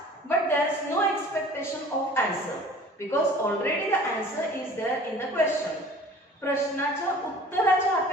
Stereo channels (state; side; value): normal; both; correlation 0.46